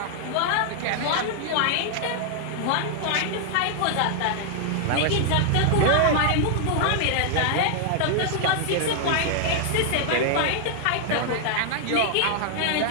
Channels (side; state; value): both; different; correlation 0.00